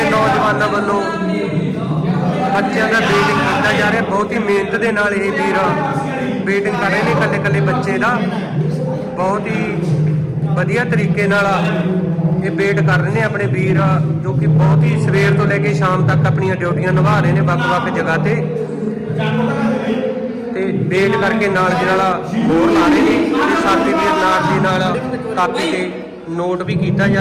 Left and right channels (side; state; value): both; identical; correlation 1.00